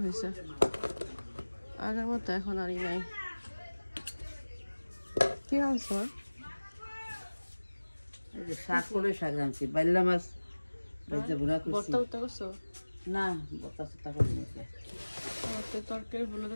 হয়েছে। আগের মতো এখন আর নাই। কি আনছো? শাক করে শাক রাঁধছি, বাইলা মাছ ভর্তা উত্তা করছো? না, ভর্তা সত্তা করে নিয়েছে। আমার তো তরকারি হলুদ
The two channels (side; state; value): both; inverted; correlation -1.00